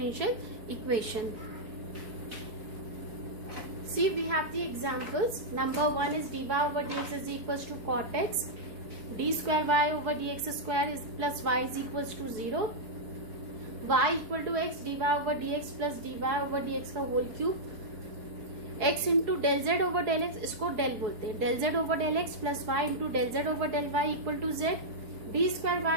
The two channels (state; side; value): late; left; 4.7 ms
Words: equation. See, we have the examples. Number 1 is dy over dx is equals to cot x. D square y over dx square is plus y is equals to 0. Y equal to x dy over dx plus dy over dx का whole cube. X into del z over del x, इसको del बोलते हैं. Del z over del x plus y into del z over del y equal to z. D square